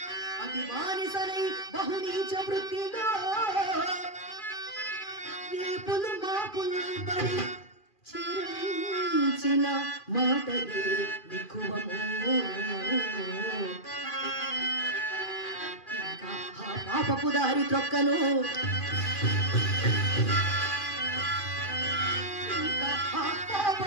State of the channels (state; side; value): late; right; 2.4 ms